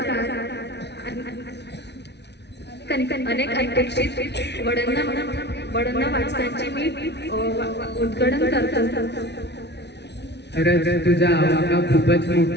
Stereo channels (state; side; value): late; right; 0.50 ms